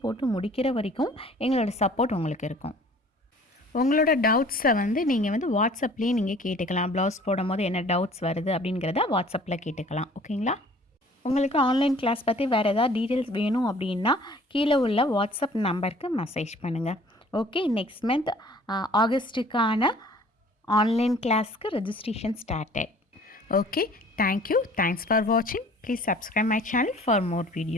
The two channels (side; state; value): both; normal; correlation 0.51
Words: போட்டு முடிக்கிற வரைக்கும் எங்களோட சப்போர்ட் உங்களுக்கு இருக்கும். உங்களோட டவுட்ஸை வந்து நீங்கள் வந்து வாட்ஸ்அப்லேயே நீங்கள் கேட்டுக்கலாம். ப்ளவுஸ் போடும் போது என்ன டவுட்ஸ் வருது அப்படிங்கிறத வாட்ஸ்அப்பில் கேட்டுக்கலாம். ஓகேங்களா, உங்களுக்கு ஆன்லைன் கிளாஸ் பற்றி வேறு ஏதாவது டீட்டெயில்ஸ் வேணும் அப்படின்னா கீழே உள்ள வாட்ஸ்அப் நம்பருக்கு மெசேஜ் பண்ணுங்கள். ஓகே, நெக்ஸ்ட் மந்த் ஆகஸ்ட்டுக்கான ஆன்லைன் கிளாஸ்க்கு registration started. Okay, thank you. Thanks for வாட்சிங். Please subscribe my channel for more